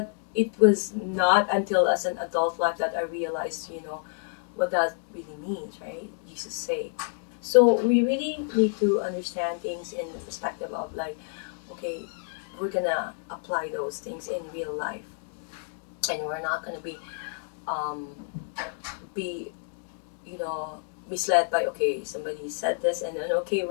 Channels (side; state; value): right; silent; 57 dB below the other